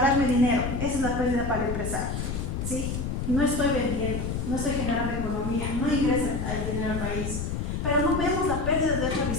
dinero. Esa es la pérdida para el empresario. ¿Sí? No estoy vendiendo, no estoy generando economía, no ingresa el dinero al país. Pero no vemos la pérdida de otra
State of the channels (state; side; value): noise; left; rumble, 3 dB below the sound